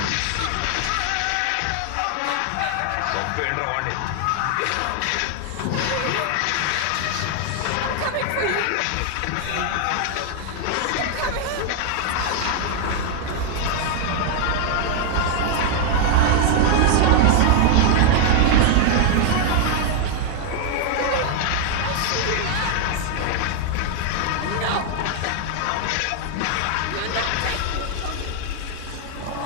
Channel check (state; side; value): different; both; correlation 0.00